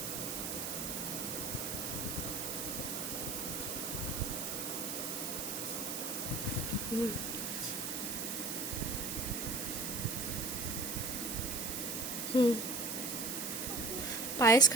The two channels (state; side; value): noise; right; hiss, 3 dB below the sound